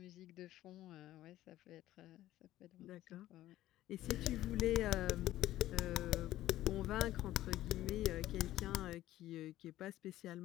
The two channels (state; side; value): quieter; right; 14.6 dB